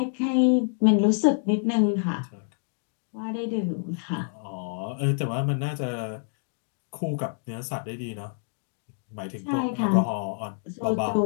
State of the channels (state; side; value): silent; right; digital silence